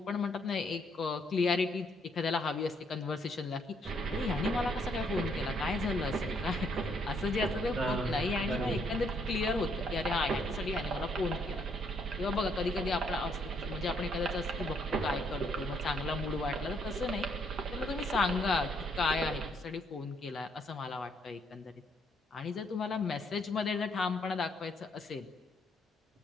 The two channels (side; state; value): both; normal; correlation 0.70